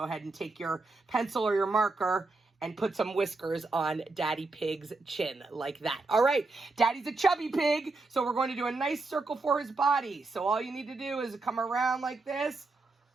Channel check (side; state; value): left; quieter; 3.5 dB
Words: ahead and take your pencil or your marker and put some whiskers on Daddy Pig's chin like that. All right, Daddy's a chubby pig, so we're going to do a nice circle for his body. So all you need to do is come around like this,